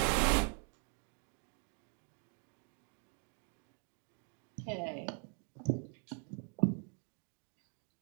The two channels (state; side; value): quieter; left; 39.4 dB